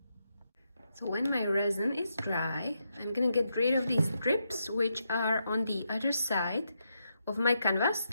So when my resin is dry, I'm gonna get rid of these drips which are on the other side of my canvas,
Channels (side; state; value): both; inverted; correlation -0.83